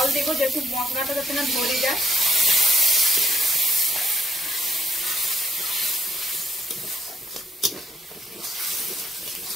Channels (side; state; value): both; normal; correlation 0.69